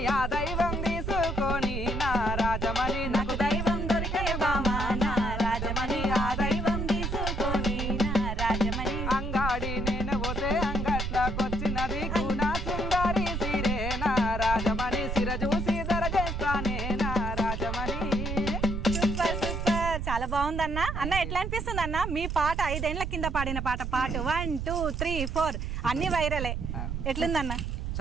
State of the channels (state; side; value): noise; right; rumble, 3 dB below the sound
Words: ఆ దైవం తీసుకొని నా రాజమణి నాకు దైవం దొరికనే బామా నా రాజమణి ఆ దైవం తీసుకొని నా రాజమణి అంగాడి నేను పోతే అంగట్లకొచ్చినది కూనా సుందరి సిరే నా రాజమణి సిర చూసి దరజేస్తానే నా రాజమణి. సూపర్ సూపర్, చాలా బాగుందన్న. అన్న ఎట్లా అనిపిస్తుంది అన్న మీ పాట? 5 ఏళ్ల కింద పాడిన పాట, పాట 1 2 3 4 అన్ని వైరలే. ఎట్లుందన్న?